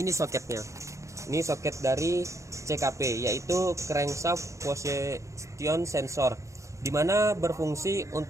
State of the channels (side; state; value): left; late; 0.15 ms